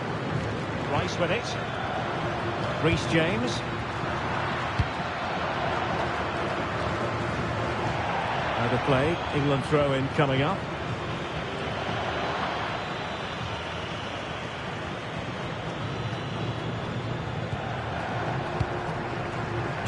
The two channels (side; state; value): both; identical; correlation 1.00